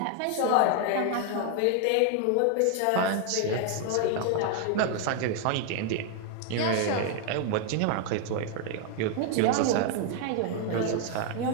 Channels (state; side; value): different; both; correlation 0.00